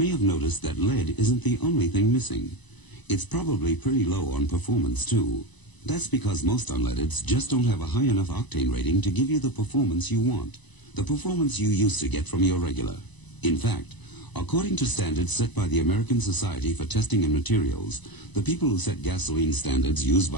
have noticed that lead isn't the only thing missing. It's probably pretty low on performance, too. That's because most unleadeds just don't have a high enough octane rating to give you the performance you want, the performance you used to get from your regular. In fact, according to standards set by the American Society for Testing and Materials, the people who set gasoline standards used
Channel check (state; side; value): late; right; 1.0 ms